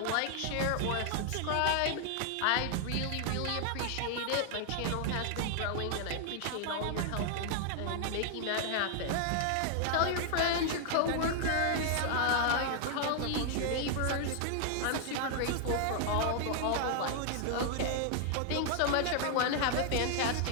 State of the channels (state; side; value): different; both; correlation 0.00